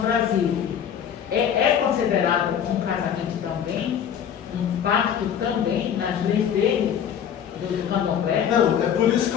Brasil, é considerado um casamento também, um pacto também, nas leis dele, do candomblé? Não, é por isso que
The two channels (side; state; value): right; quieter; 8.7 dB